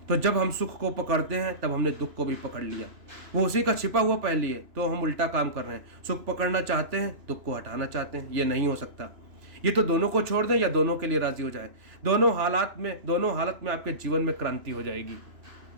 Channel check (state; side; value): late; left; 3.0 ms